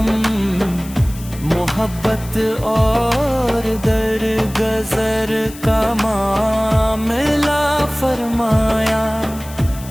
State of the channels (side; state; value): left; noise; hiss, 17 dB below the sound